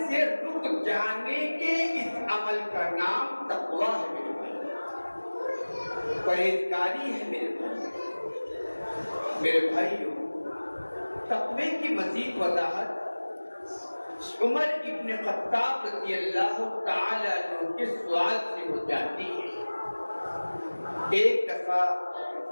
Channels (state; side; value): inverted; both; correlation -1.00